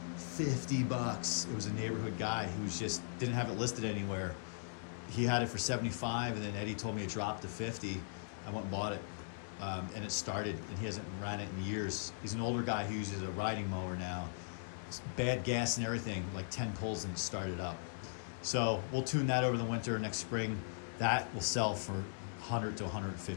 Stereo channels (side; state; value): right; silent; digital silence